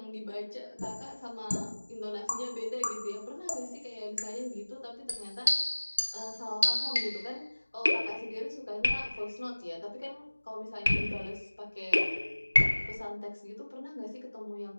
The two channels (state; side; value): inverted; both; correlation -1.00